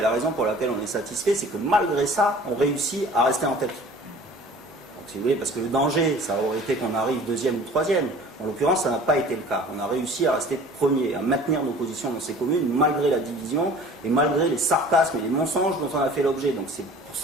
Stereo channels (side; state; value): both; normal; correlation 0.46